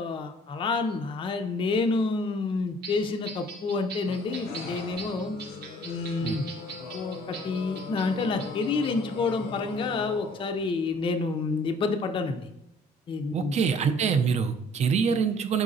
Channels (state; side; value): normal; both; correlation 0.56